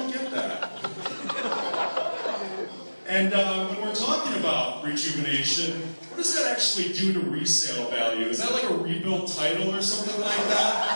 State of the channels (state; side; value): inverted; both; correlation -1.00